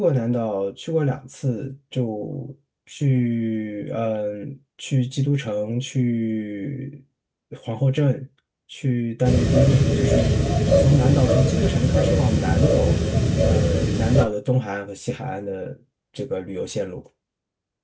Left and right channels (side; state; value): both; identical; correlation 1.00